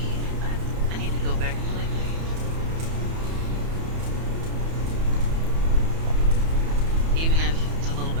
I need to go back and play Thief. Even if it's a little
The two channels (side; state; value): left; late; 31 ms